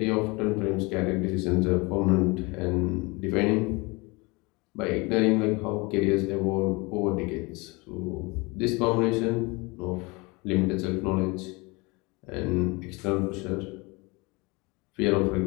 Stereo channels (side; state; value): right; quieter; 26.4 dB